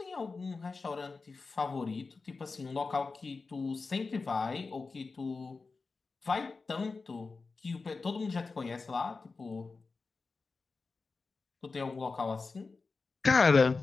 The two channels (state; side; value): quieter; right; 4.2 dB